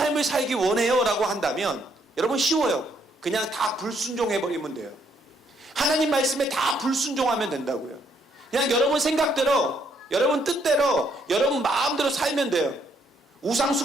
살기 원해요 라고 한다면 여러분 쉬워요. 그냥 다 불순종해버리면 돼요. 하나님 말씀에 다 불순종하면 된다고요. 그냥 여러분 생각대로, 여러분 뜻대로, 여러분 마음대로 살면 돼요. 우상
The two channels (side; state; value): both; normal; correlation 0.71